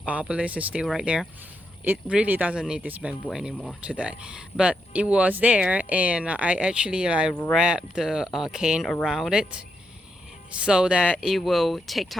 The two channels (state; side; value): normal; both; correlation 0.82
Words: obelisk is still right there. It really doesn't need this bamboo anymore today, but it was there, and I actually wrapped the cane around it so that it will take